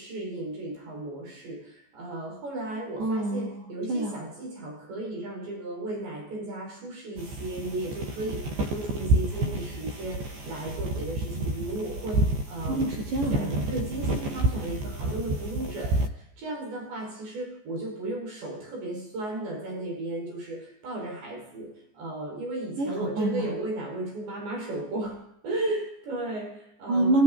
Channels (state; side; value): late; left; 14 ms